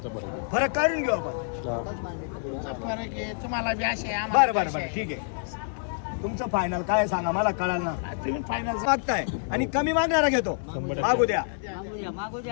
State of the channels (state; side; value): silent; right; digital silence